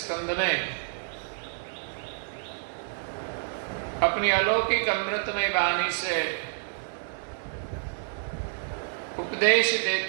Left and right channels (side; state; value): left; silent; 59 dB below the other